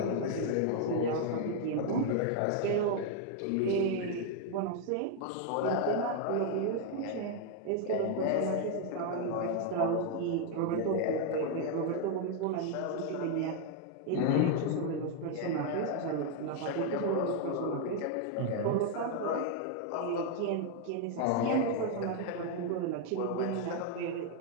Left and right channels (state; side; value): different; both; correlation 0.01